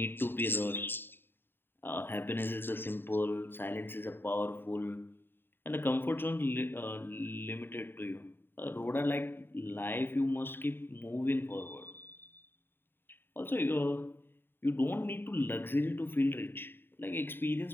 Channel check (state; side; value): late; right; 0.10 ms